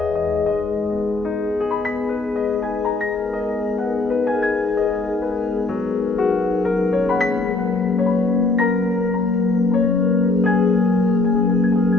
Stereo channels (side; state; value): right; quieter; 3.3 dB